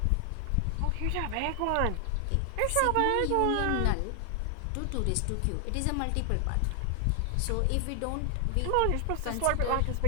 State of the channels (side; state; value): both; different; correlation 0.00